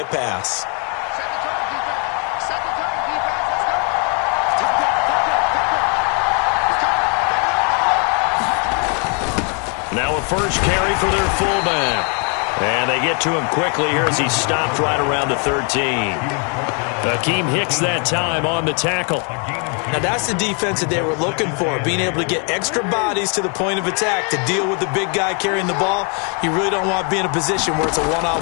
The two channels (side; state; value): right; quieter; 38.1 dB